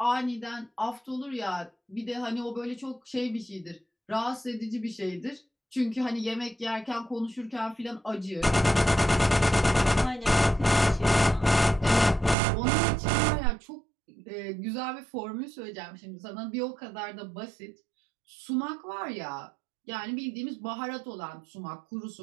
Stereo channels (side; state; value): left; drops out; at 12.4 s